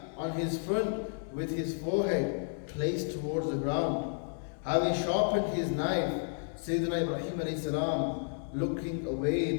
on his front with his forehead placed towards the ground. Having sharpened his knife, Sayyidina Ibrahim alayhi salam, looking away,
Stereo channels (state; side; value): silent; right; digital silence